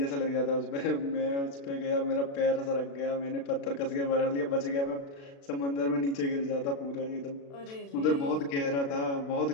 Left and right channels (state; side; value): late; right; 36 ms